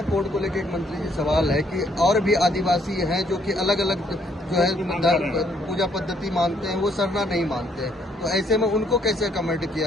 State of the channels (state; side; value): normal; both; correlation 0.68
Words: कोड को लेकर एक मंत्री जी सवाल है कि और भी आदिवासी हैं जो कि अलग अलग जो है पूजा पद्धति मानते हैं, वो सरना नहीं मानते हैं, तो ऐसे में उनको कैसे कमेंट